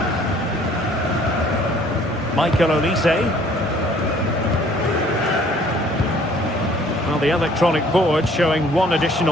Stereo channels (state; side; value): normal; both; correlation 0.57